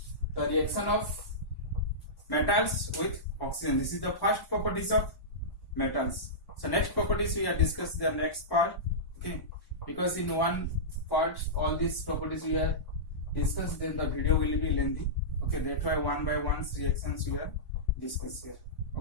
the reaction of metals with oxygen. This is the first properties of metals. So next properties we have discussed the next part. Okay, because in one part all these properties we have discussed, then the video will be lengthy. Okay, that's why one by one reactions we are discussed here.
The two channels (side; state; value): right; late; 1.1 ms